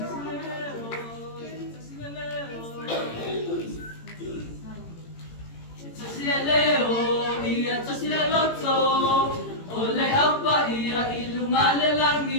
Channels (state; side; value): late; right; 18 ms